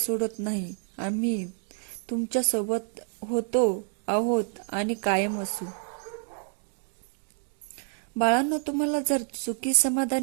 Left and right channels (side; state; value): left; silent; 56 dB below the other